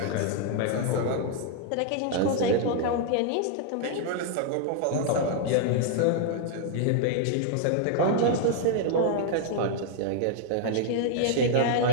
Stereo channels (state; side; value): different; both; correlation 0.00